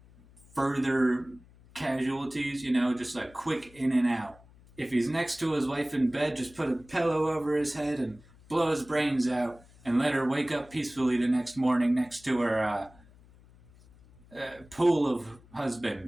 further casualties, just like quick in and out. If he's next to his wife in bed, just put a pillow over his head and blow his brains out and let her wake up peacefully the next morning next to her pool of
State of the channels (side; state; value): left; noise; hum, 25 dB below the sound